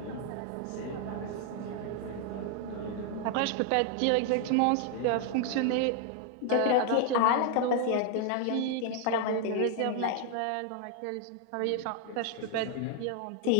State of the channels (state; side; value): different; both; correlation 0.00